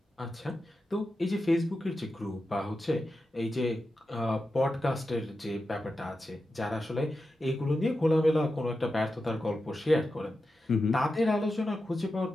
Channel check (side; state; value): both; normal; correlation 0.90